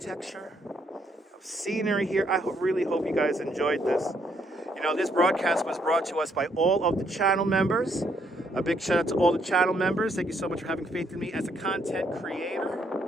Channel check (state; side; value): normal; both; correlation 0.72